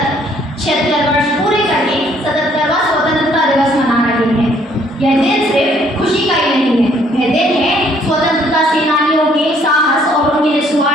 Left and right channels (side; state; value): both; normal; correlation 0.64